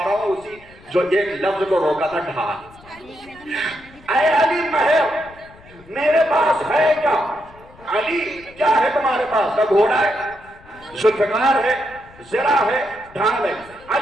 رہا ہوں اسی جو ایک لفظ کو روکا تھا، ڈھال. اے علی مہر میرے پاس ہے کیا؟ علی کیا ہے تمہارے پاس؟ کا گھوڑا ہے، ذوالفقار ہے، زرہ ہے، ڈھال ہے.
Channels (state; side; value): noise; left; rumble, 24 dB below the sound